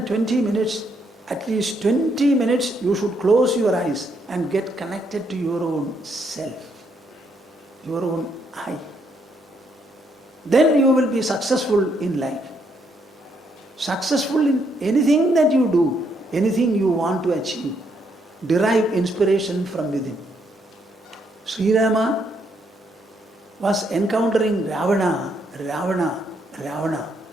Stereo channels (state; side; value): normal; both; correlation 0.74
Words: minutes, at least 20 minutes you should close your eyes and get connected to your own self, your own I. Then you will be successful in life. Successful in anything that you do, anything you want to achieve. Derive inspiration from within. Sri Rama was encountering Ravana.